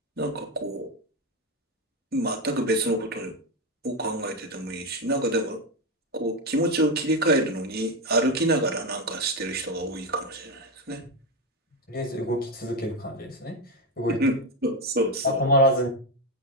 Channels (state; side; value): normal; both; correlation 0.11